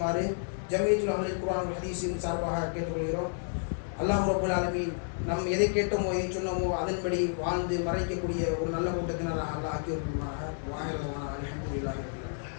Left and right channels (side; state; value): right; silent; 57 dB below the other